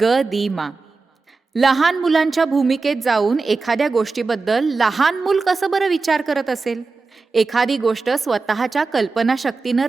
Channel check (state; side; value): quieter; left; 4.1 dB